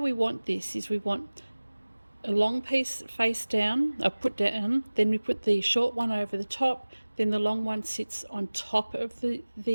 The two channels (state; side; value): inverted; both; correlation -1.00